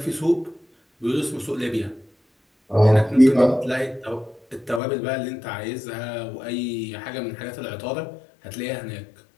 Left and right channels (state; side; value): drops out; right; at 4.8 s